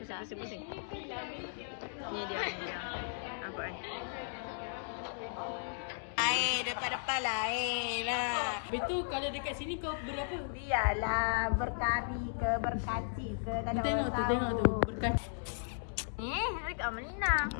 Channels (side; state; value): right; silent; digital silence